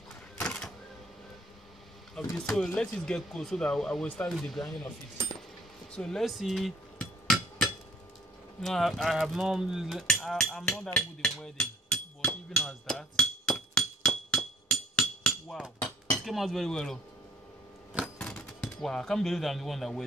of this. So let it get cold so that I will start with the grinding of it. So let's see. No, I have not. I'm not that good in welding, but even as that, wow, it came out very well. Oh. Wow, I can't believe I'm the one that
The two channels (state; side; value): normal; both; correlation 0.59